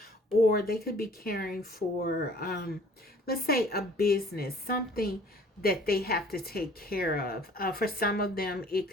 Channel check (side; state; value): both; normal; correlation 0.53